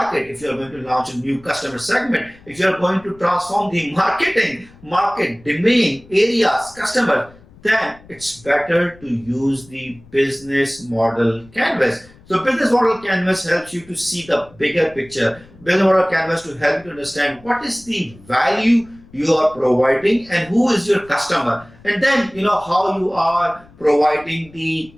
if you are going to launch a new customer segment, if you are going to transform the market, domain, areas, customer, then it's better to use the business model canvas. So business model canvas helps you to see the bigger picture. Business model canvas to help you to understand what is the value you are providing and who is your customer, and then how you are providing the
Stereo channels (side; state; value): left; noise; rumble, 24 dB below the sound